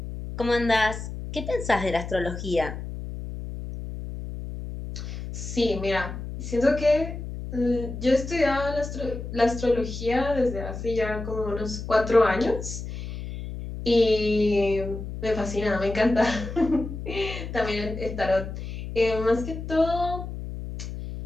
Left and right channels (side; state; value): left; noise; hum, 8 dB below the sound